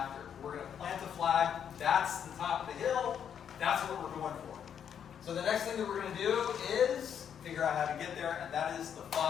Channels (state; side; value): quieter; right; 8.4 dB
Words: We're going to plant a flag. That's the top of the hill. That's what we're going for. So the next thing that we're going to do is figure out how to get there, and that is the